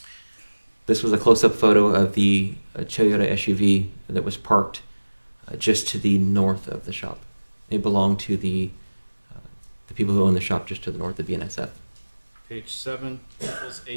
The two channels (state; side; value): inverted; both; correlation -1.00